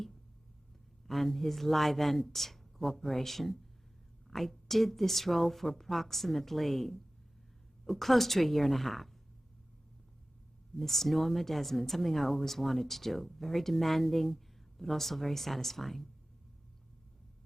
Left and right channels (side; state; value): both; normal; correlation 0.96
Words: and his Livent Corporation. I did this role for approximately close to a year and a half. Miss Norma Desmond, something I always wanted to do. Very demanding, but also very satisfying.